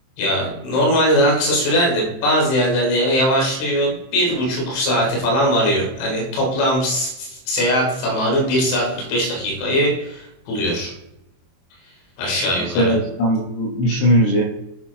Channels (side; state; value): right; late; 23 ms